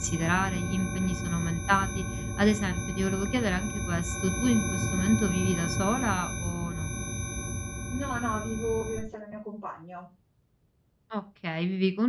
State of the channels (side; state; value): both; identical; correlation 1.00